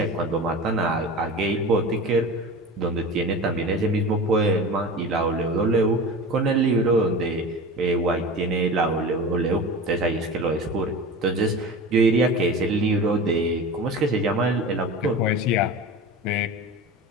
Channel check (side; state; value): both; normal; correlation 0.32